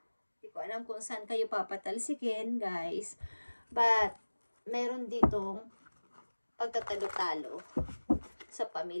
Hindi ko alam kung saan kayo papatalsikin, guys. But, meron ditong pagtatalo-talo sa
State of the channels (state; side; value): inverted; both; correlation -1.00